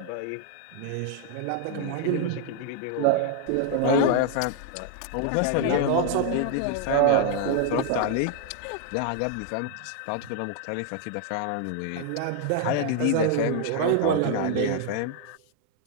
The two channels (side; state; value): both; different; correlation 0.00